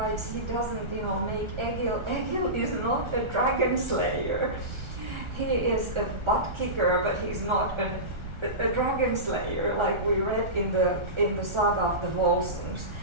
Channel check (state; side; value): late; left; 1.4 ms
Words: he doesn't, make Egil. Egil is not a dragon slayer. He is a butt kicker, but he's not a dragon slayer, like we read in the Saga of the Volsungs.